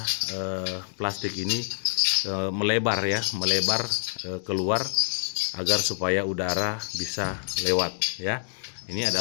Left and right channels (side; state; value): right; silent; digital silence